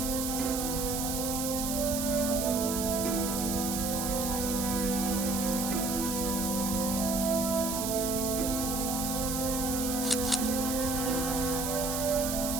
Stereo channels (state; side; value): noise; right; hiss, 3 dB below the sound